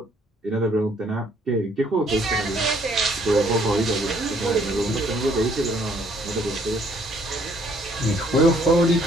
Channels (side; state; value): both; normal; correlation 0.64